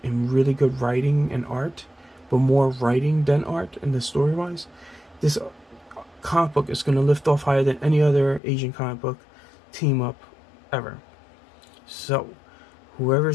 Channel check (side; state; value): right; drops out; at 8.4 s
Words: in really good writing and art, but more writing than art in the story wise. This comic book is going to lift off higher than any other Asian comic book team up ever. So